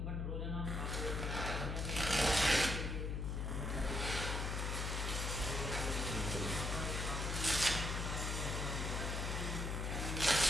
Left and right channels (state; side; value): noise; left; hum, 1 dB below the sound